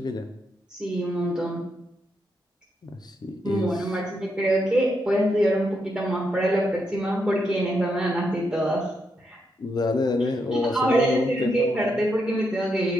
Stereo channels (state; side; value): normal; both; correlation 0.81